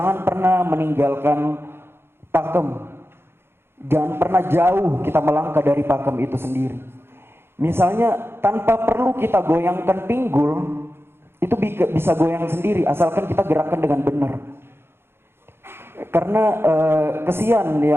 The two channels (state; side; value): late; left; 0.11 ms